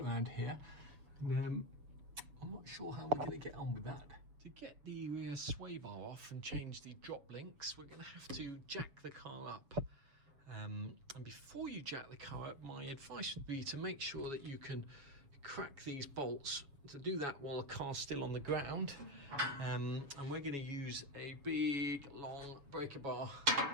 around here, and I'm not sure how we're going to get on with that. To get the rear sway bar off and change the drop links, we're going to have to jack the car up. And before you jack the car up, my advice would be to make sure that you can crack these bolts. To do that while the car's still on the ground, and we're going to use a big long breaker bar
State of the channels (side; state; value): left; late; 7.0 ms